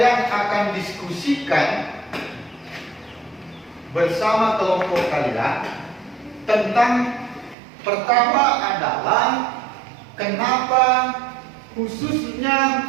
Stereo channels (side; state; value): left; drops out; at 7.6 s